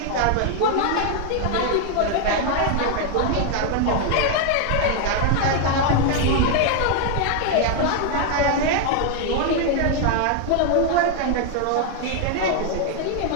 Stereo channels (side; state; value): both; different; correlation 0.00